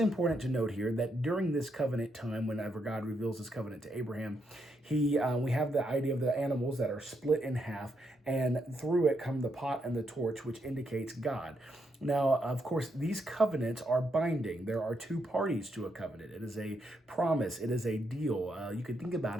to note here that during this covenant time, whenever God reveals his covenant to Abraham, we have the idea of the animals that are split in half, and through it come the pot and the torch, which indicates God. Now, of course, these covenants are binding. There are two parties to a covenant. It is a promise. It is a deal. You could think about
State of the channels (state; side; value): normal; both; correlation 0.79